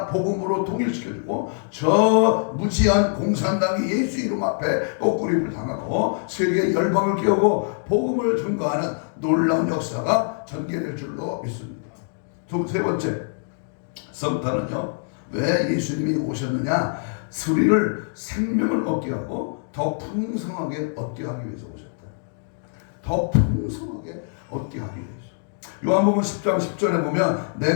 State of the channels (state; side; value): silent; right; digital silence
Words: 복음으로 통일시켜주고 저 무지한 공산당이 예수 이름 앞에 꺾구림을 당하고 세계 열방을 깨우고 복음을 증거하는 놀라운 역사가 전개될 줄로 믿습니다. 세 번째, 성탄은요 왜 예수님이 오셨느냐? 우리를 생명을 얻게 하고 더 풍성하게 얻게 하기 위해서 오셨다. 더 풍성하게 얻게 하기 위해서. 요한복음 10장 10절에 보면